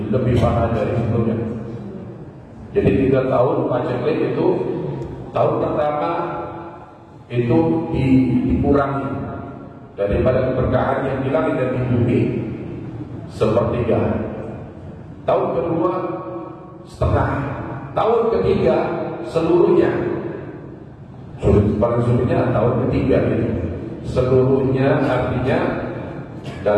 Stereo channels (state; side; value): identical; both; correlation 1.00